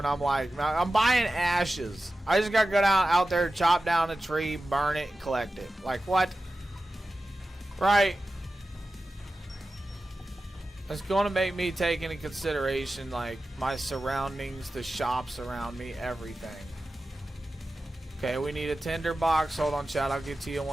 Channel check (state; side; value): normal; both; correlation 0.94